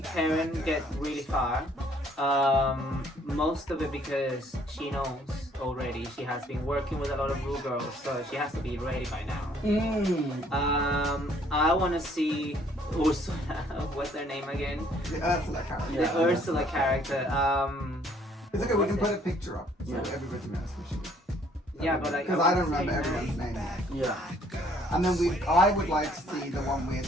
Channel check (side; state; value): both; normal; correlation 0.62